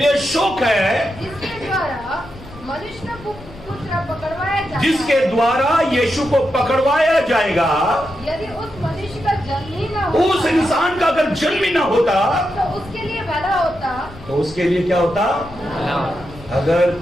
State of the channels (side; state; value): left; noise; rumble, 18 dB below the sound